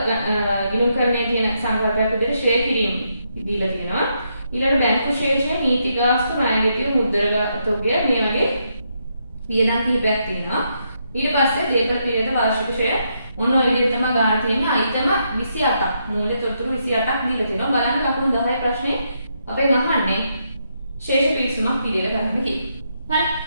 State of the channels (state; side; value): inverted; both; correlation -0.79